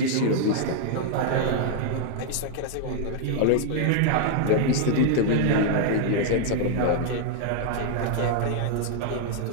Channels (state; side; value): different; both; correlation 0.00